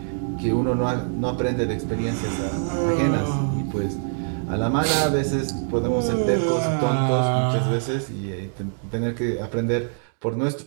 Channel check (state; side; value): silent; left; digital silence